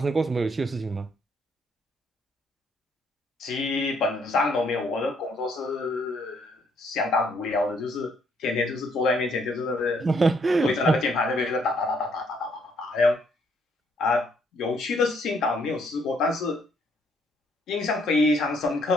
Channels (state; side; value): normal; both; correlation 0.69